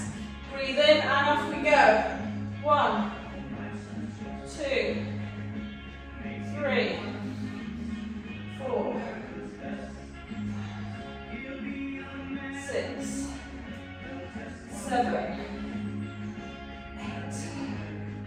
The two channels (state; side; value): identical; both; correlation 1.00